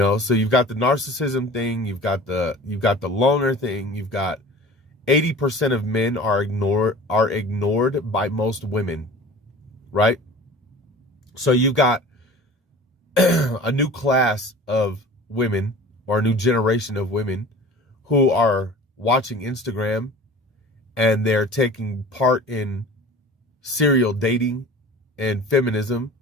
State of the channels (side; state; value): both; normal; correlation 0.41